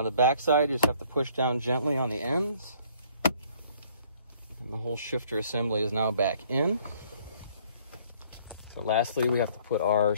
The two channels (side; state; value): both; inverted; correlation -0.60